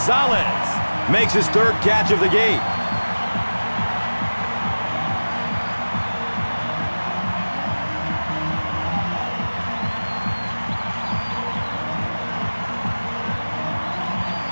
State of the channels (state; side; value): inverted; both; correlation -1.00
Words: makes his third catch of the game.